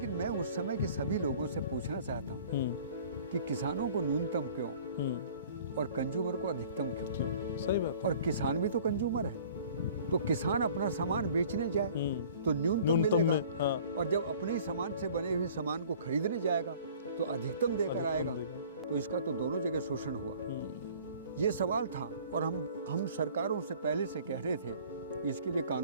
मैं उस समय के सभी लोगों से पूछना चाहता हूँ कि किसानों को न्यूनतम क्यों और कंज्यूमर को अधिकतम क्यों? सही बात। और किसान भी तो कंज्यूमर है, तो किसान अपना सामान बेचने जाए तो न्यूनतम मिलेगा, और जब अपने सामान से बने हुए सामान को खरीदने जाएगा तो अधिकतम देकर आएगा। तो इसका तो दोनों जगह शोषण हुआ। ये सवाल था, और हम सरकारों से पहले से कह रहे थे इसके लिए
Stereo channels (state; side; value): inverted; both; correlation -0.50